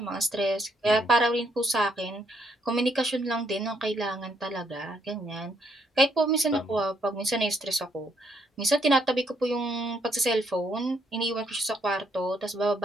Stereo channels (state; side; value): normal; both; correlation 0.73